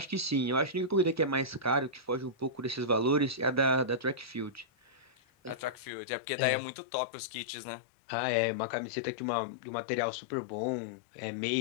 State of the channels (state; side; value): drops out; right; at 5.9 s